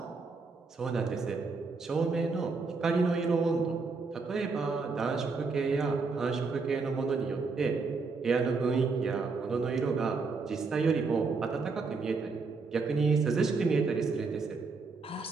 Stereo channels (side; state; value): left; quieter; 4.3 dB